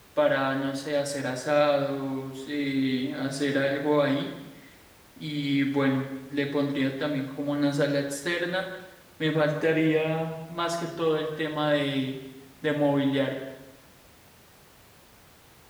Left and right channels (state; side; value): identical; both; correlation 1.00